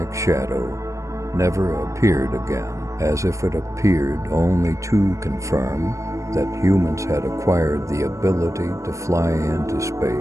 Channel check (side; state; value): left; late; 0.15 ms